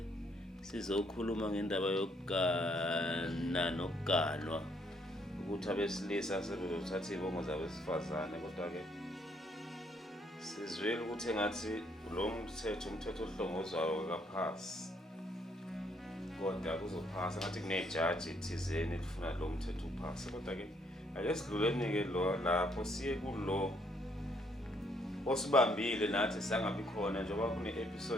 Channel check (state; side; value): normal; both; correlation 0.69